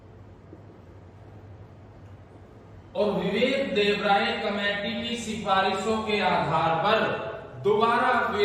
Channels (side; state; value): both; identical; correlation 1.00